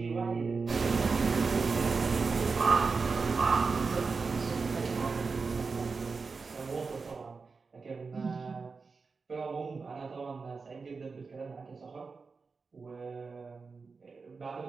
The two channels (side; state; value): left; quieter; 4.6 dB